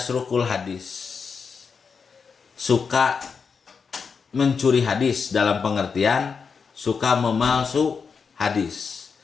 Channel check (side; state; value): right; quieter; 5.6 dB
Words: hadis, suka mencuri hadis, dalam pengertian suka memalsu hadis.